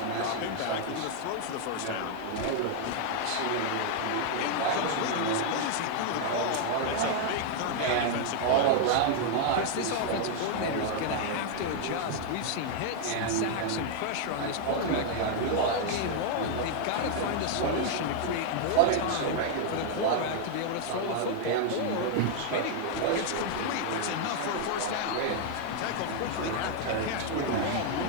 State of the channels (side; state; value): both; different; correlation 0.00